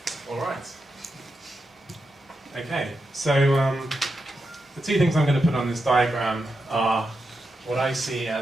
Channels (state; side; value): normal; both; correlation 0.87